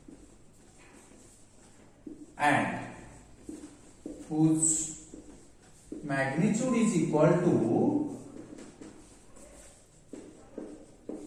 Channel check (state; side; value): identical; both; correlation 1.00